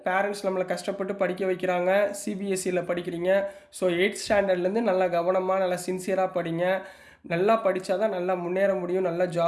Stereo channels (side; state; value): both; identical; correlation 1.00